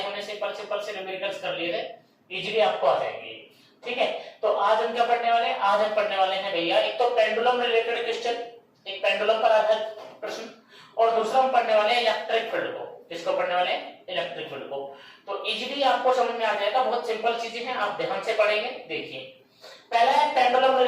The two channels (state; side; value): identical; both; correlation 1.00